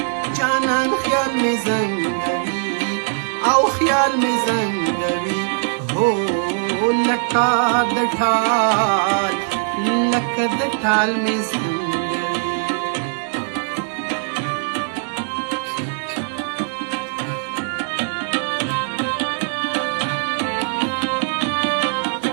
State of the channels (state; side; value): silent; left; 65 dB below the other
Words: جانان خیال مې زنګوي او خیال مې زنګوي هو لکه د ټال مې زنګوي